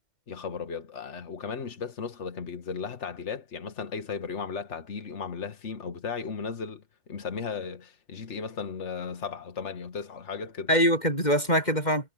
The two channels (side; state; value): right; late; 2.1 ms